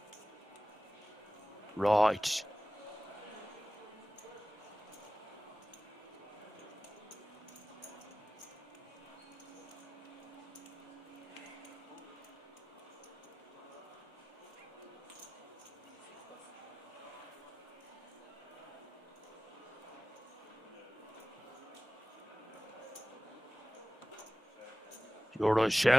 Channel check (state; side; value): normal; both; correlation 0.97